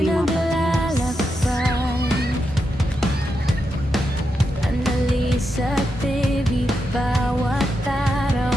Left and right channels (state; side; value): normal; both; correlation 0.86